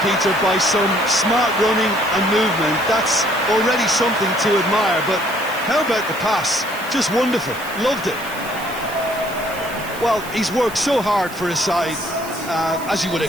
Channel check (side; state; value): right; noise; hiss, 16 dB below the sound